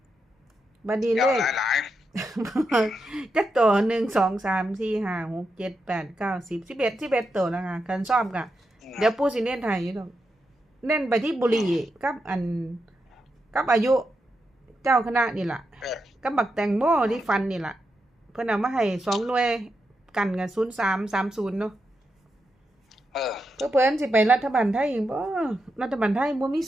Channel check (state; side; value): normal; both; correlation 0.86